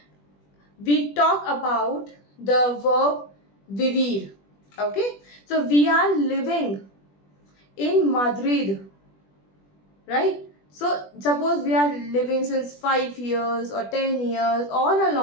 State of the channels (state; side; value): late; right; 20 ms